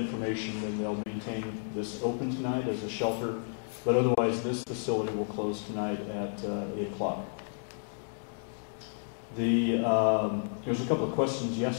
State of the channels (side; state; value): right; silent; digital silence